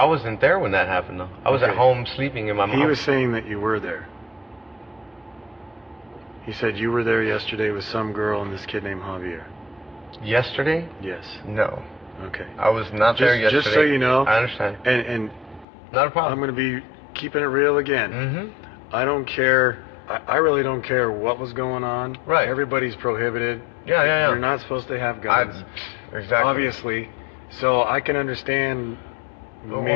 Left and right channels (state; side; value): drops out; right; at 15.7 s